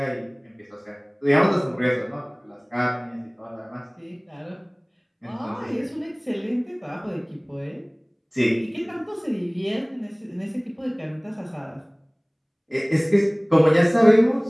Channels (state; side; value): identical; both; correlation 1.00